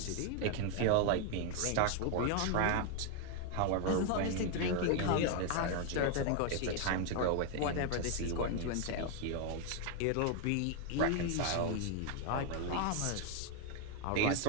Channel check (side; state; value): both; different; correlation 0.01